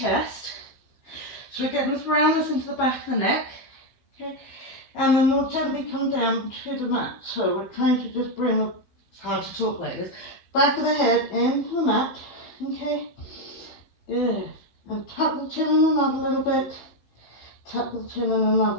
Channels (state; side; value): late; right; 15 ms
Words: So we're getting this roundness into the back of the neck. Okay. And then we'll gently come down to the mat. So we're trying to just bring the, it's hard to talk like this, back of the head into the mat. Okay. Good. And tuck the chin in another little bit. Tuck the chin in